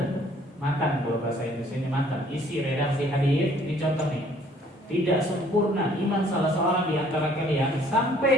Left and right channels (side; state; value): both; normal; correlation 0.60